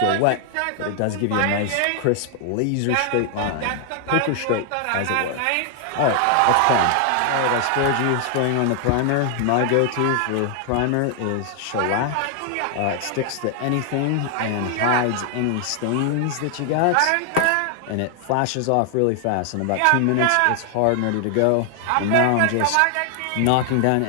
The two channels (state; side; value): different; both; correlation 0.00